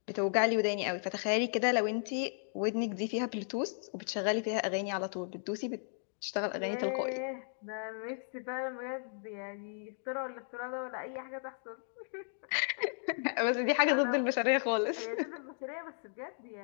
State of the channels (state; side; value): silent; right; digital silence